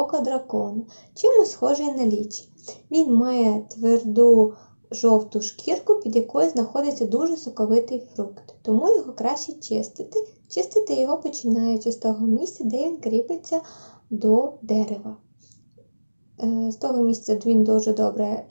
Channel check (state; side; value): inverted; both; correlation -1.00